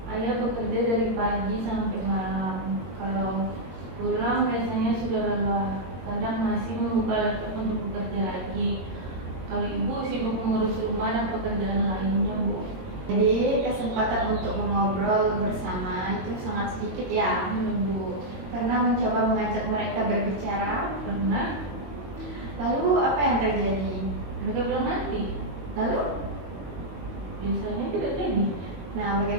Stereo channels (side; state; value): left; late; 22 ms